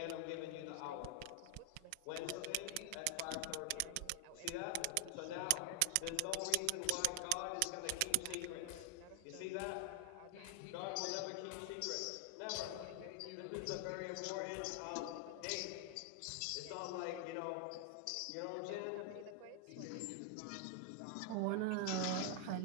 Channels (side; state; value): both; different; correlation 0.00